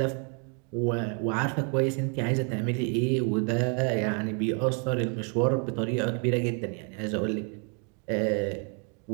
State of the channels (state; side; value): quieter; left; 39.2 dB